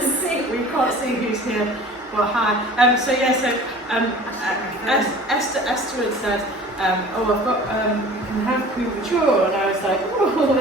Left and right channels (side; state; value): both; normal; correlation 0.44